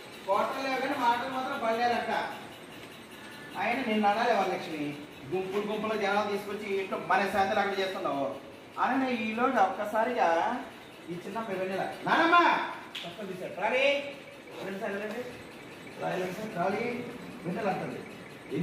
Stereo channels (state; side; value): identical; both; correlation 1.00